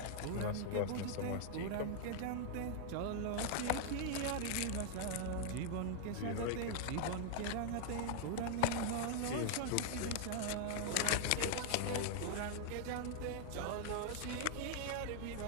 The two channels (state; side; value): different; both; correlation 0.00